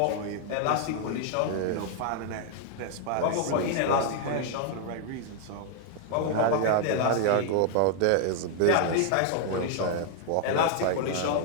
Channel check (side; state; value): both; different; correlation 0.00